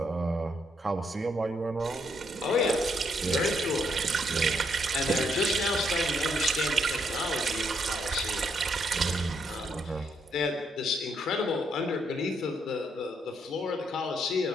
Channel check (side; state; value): both; normal; correlation 0.74